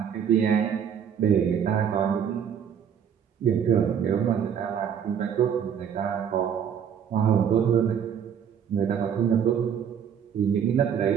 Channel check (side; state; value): left; quieter; 8.2 dB